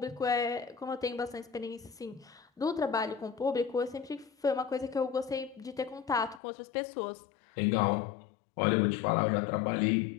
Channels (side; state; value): right; drops out; at 6.4 s